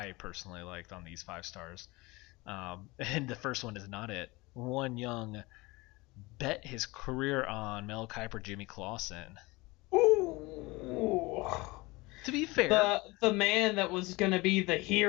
personally liked on these 5 stars. And the first one is not it. One young bet his career on Mel Kiper, Jimmy Clausen. Ooh. To be fair, The man that was going to be the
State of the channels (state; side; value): quieter; right; 23.0 dB